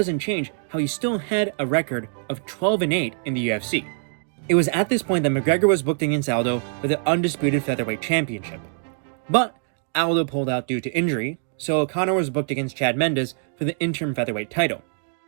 change how he still had a record of 12-8 in the UFC. It was at this point that McGregor was booked against Aldo for the undisputed featherweight championship. But Aldo pulled out due to injury, so Conor was booked against Chad Mendes for the interim featherweight title.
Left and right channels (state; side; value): silent; left; digital silence